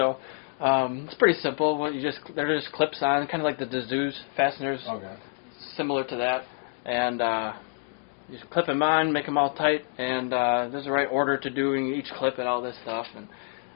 It's pretty simple. What they're just clips on, kind of like the Dazoo's fasteners. Okay. Similar to that, and you just clip them on, make them all tight, and there's the right order to doing each clip and all this stuff. And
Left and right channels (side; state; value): right; silent; 60 dB below the other